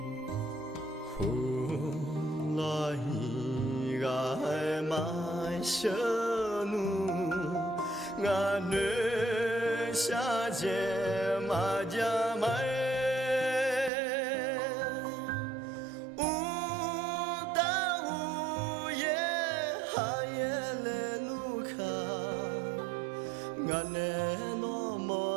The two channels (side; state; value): left; drops out; at 13.9 s